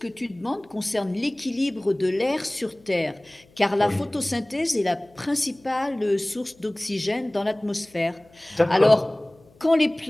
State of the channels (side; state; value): left; noise; hum, 29 dB below the sound